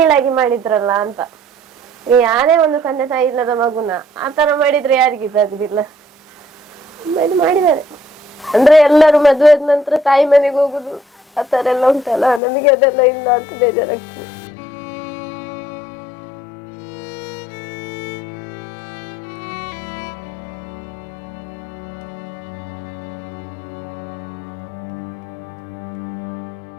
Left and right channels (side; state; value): right; drops out; at 12.4 s